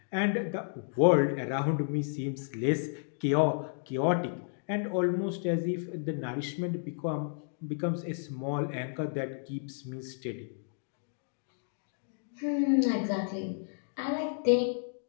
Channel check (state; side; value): silent; right; digital silence